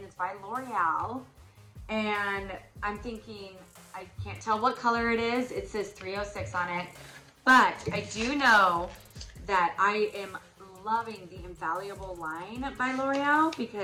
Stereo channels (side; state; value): both; identical; correlation 1.00